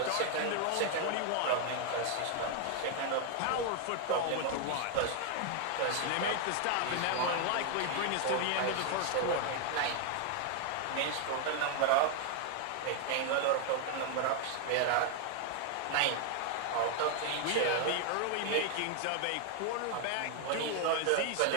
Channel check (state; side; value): different; both; correlation 0.00